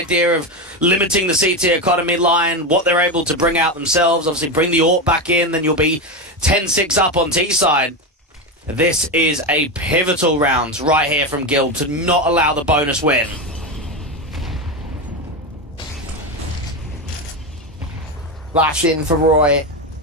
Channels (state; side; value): normal; both; correlation 0.15